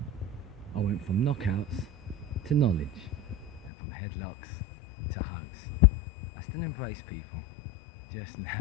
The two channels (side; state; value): right; drops out; at 3.7 s